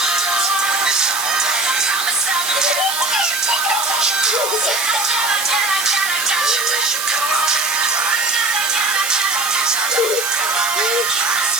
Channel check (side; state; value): right; noise; hiss, 4 dB below the sound